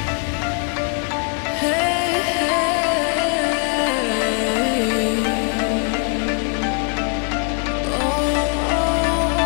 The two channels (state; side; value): quieter; right; 39.4 dB